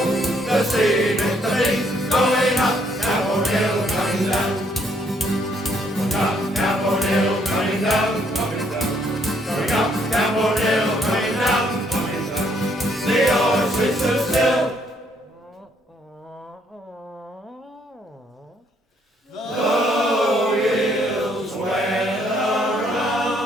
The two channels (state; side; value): normal; both; correlation 0.69